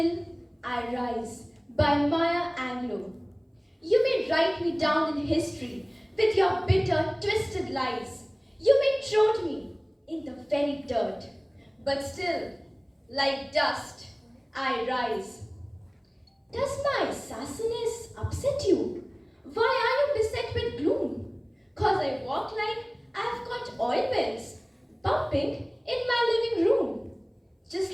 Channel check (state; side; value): identical; both; correlation 1.00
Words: I Rise by Maya Angelou. You may write me down in history with your bitter, twisted lies. You may trod me in the very dirt, but still, like dust, I rise. Does my sassiness upset you? Why are you beset with gloom? 'Cause I walk like I've got oil wells pumping in my living room, just